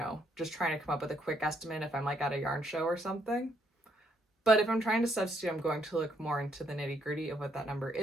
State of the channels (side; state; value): both; normal; correlation 0.72